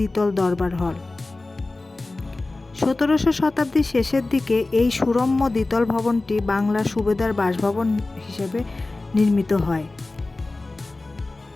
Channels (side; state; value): right; quieter; 3.1 dB